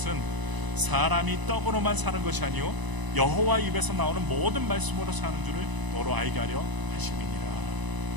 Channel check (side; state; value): left; late; 1.0 ms